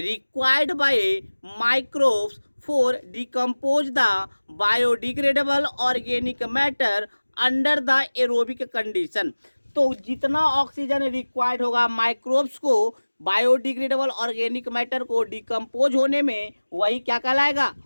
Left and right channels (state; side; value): inverted; both; correlation -1.00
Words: by microbes for decompose the biodegradable organic matter under the aerobic condition. तो जितना ऑक्सीजन रिक्वायर्ड होगा माइक्रोब्स को बायोडिग्रेडेबल ऑर्गेनिक मैटर को डिकम्पोज होने में, वही क्या कहलाएगा?